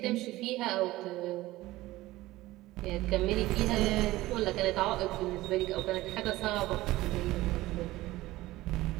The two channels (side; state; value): left; quieter; 17.6 dB